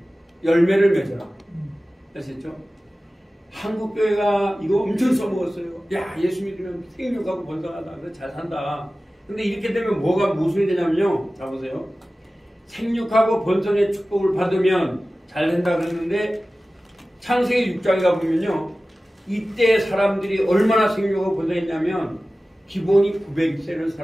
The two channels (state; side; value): normal; both; correlation 0.96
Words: 열매를 맺어라. 아시겠죠? 한국 교회가 이거 엄청 써먹었어요. 야, 예수 믿으면 생육하고 번성하다. 그래서 잘 산다. 근데 이렇게 되면 뭐가 모순이 되냐면요. 자 보세요. 생육하고 번성의 축복을 받으면 잘 된다 그랬는데 창세기 6장에 가보면요. 이때 사람들이 얼마나 생육하고 번성했냐면 기본이 900세를